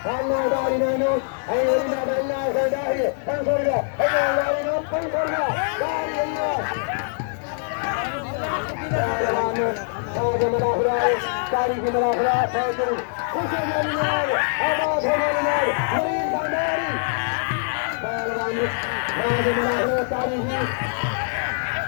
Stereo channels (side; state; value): right; silent; 63 dB below the other